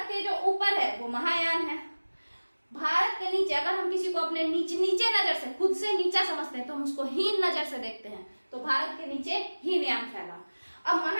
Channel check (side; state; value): both; inverted; correlation -1.00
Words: के जो ऊपर है वो महायान है, भारत के नीचे अगर हम किसी को अपने नीचे नजर से, खुद से नीचा समझते हैं तो हम उसको हीन नजर से देखते हैं। तो भारत के नीचे हीनयान फैला। अब